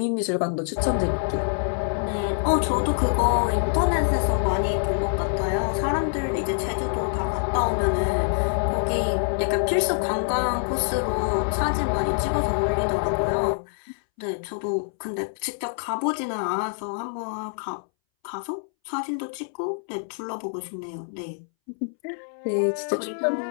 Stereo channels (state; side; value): silent; right; 61 dB below the other